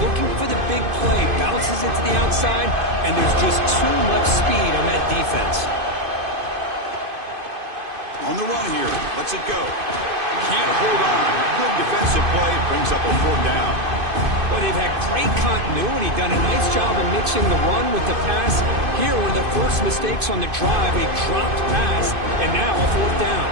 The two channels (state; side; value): late; left; 2.5 ms